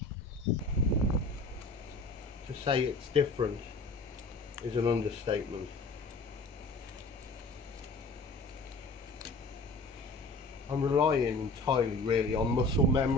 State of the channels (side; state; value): right; quieter; 3.1 dB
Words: To say it's different is an understatement. I'm relying entirely really on muscle